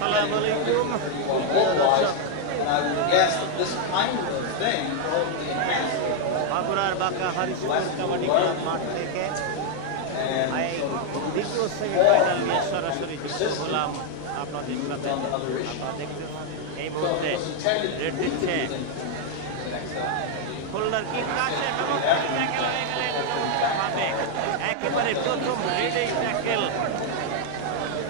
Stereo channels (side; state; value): both; different; correlation 0.00